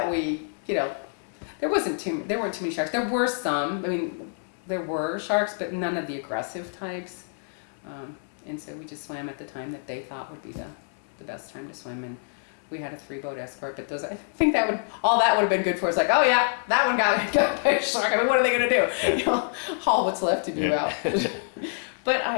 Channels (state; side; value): silent; right; digital silence